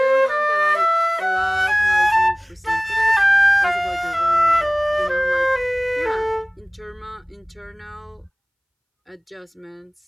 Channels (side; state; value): both; identical; correlation 1.00